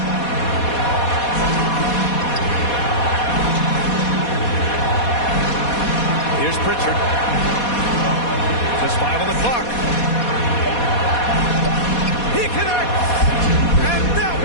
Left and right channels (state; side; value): late; right; 4.2 ms